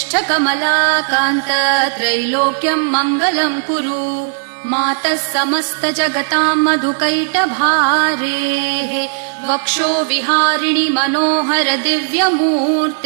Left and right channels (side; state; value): left; silent; digital silence